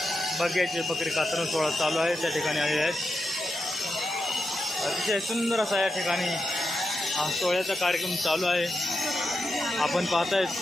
बग्याचे बकरी कात्रण सोहळा चालू आहे त्या ठिकाणी आलेले आहेत। अतिशय सुंदर असा या ठिकाणी हा सोहळ्याचा कार्यक्रम चालू आहे। आपण पाहताय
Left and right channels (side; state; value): both; normal; correlation 0.87